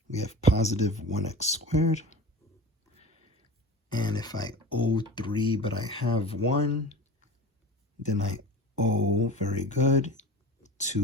We have positive 1x². And if I owe 3, but I have 1, then I owe, very good,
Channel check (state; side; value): normal; both; correlation 0.34